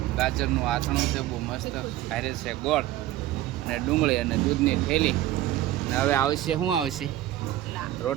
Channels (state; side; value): quieter; left; 14.3 dB